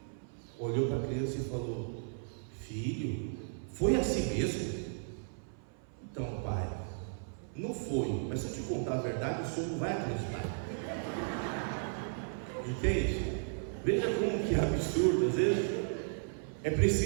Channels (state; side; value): silent; left; 55 dB below the other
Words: olhou para a criança e falou: filho, foi assim mesmo? Então, pai, não foi, mas se eu te contar a verdade, o senhor não vai acreditar. Entende? Veja como que é absurdo. Às vezes é